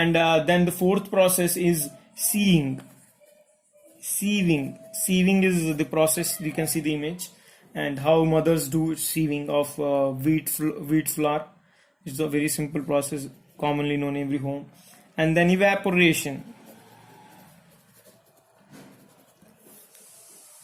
then the fourth process is sieving. Sieving is the process. You can see the image, and how mothers do sieving of wheat flour. It's a very simple process, commonly known in every home. And then evaporation.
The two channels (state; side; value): identical; both; correlation 1.00